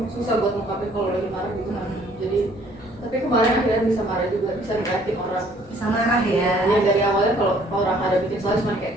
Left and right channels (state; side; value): normal; both; correlation 0.60